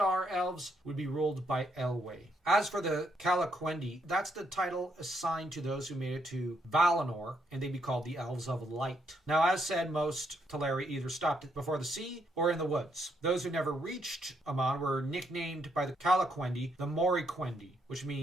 elves would be ruled by Elwë. As for the Calaquendi, that's the title assigned to those who made it to Valinor, and they'd be called the Elves of Light. Now, as said, most Teleri either stopped before the sea or in the woods. Those who never reached Aman were nicknamed by the Calaquendi the Moriquendi, which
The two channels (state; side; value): normal; both; correlation 0.75